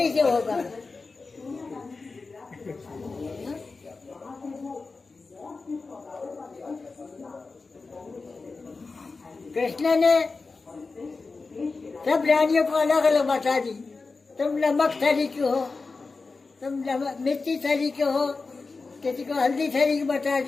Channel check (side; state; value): right; quieter; 4.1 dB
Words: होगा? कृष्ण ने सब रानियों को अलग अलग बता दी, तुम नमक सरी के हो, तुम नमक मिर्ची सरी के हो, किसी को हल्दी सरी की बता